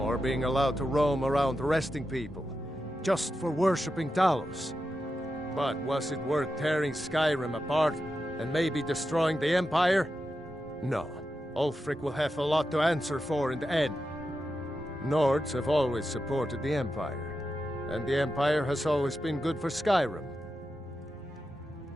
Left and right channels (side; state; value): both; normal; correlation 0.89